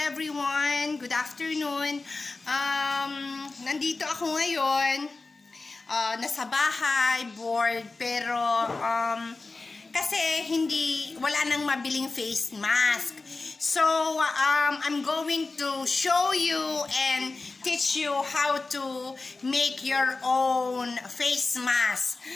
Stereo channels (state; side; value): quieter; right; 3.6 dB